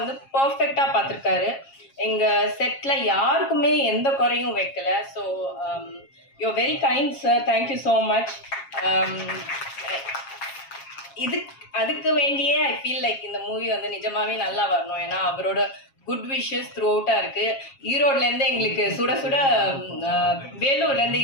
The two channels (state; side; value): late; right; 7.4 ms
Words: பர்ஃபெக்டாக பார்த்துருக்காரு. எங்கள் செட்டில் யாருக்குமே எந்த குறையும் வைக்கலை. So you very kind sir, thank you so much. அதுக்கு வேண்டியே ஐ ஃபீல் லைக் இந்த மூவி வந்து நிஜமாகவே நல்லா வரணும். ஏன்னா அவரோட குட் விஷஸ் த்ரூ அவுட்டாக இருக்குது. ஈரோட்லேருந்து எங்களுக்கு சுட சுட, வேலூர்லேருந்து